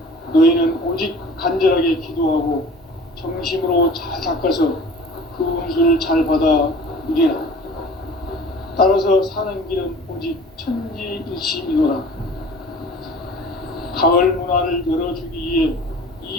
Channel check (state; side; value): normal; both; correlation 0.44